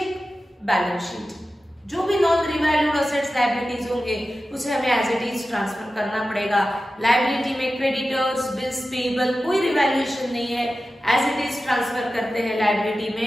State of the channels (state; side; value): normal; both; correlation 0.93